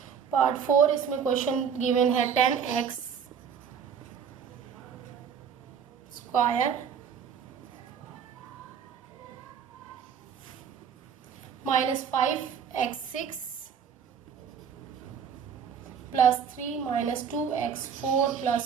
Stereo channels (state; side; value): quieter; left; 7.4 dB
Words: पार्ट 4, इसमें क्वेश्चन गिवन है 10x² -5x6 +3 -2x4